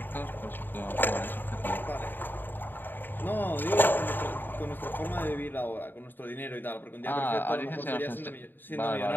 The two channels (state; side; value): late; right; 0.093 ms